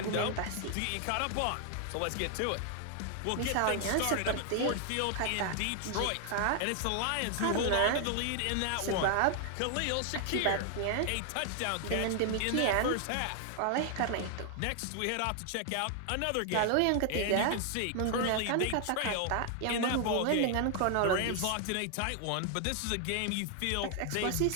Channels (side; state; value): both; different; correlation 0.00